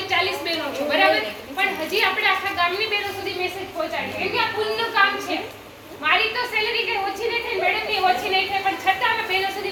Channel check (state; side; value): identical; both; correlation 1.00